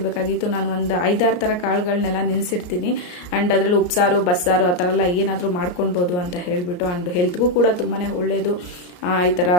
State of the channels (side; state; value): right; late; 34 ms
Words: ನಾನು ಒಂದು 5-6 ಥರ ಕಾಳುಗಳನ್ನೆಲ್ಲ ನೆನೆಸಿಡ್ತೀನಿ. ಆ್ಯಂಡ್ ಅದರಲ್ಲಿ ಉಪ್ಸಾರು ಬಸ್ಸಾರು ಆ ಥರ ಎಲ್ಲ ಏನಾದರೂ ಮಾಡ್ಕೊಳ್ಬೋದು ಅಂತ ಹೇಳಿಬಿಟ್ಟು. ಆ್ಯಂಡ್ ಹೆಲ್ತ್ಗೂ ಕೂಡ ತುಂಬಾ ಒಳ್ಳೆಯದು ಈ ಥರ